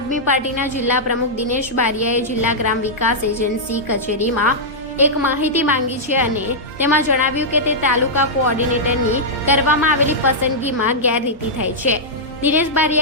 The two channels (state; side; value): normal; both; correlation -0.09